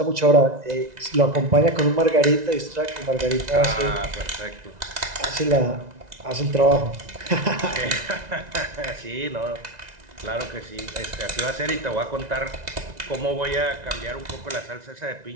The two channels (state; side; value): late; left; 1.9 ms